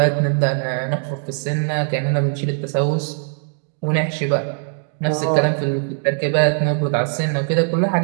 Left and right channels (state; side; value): silent; left; 55 dB below the other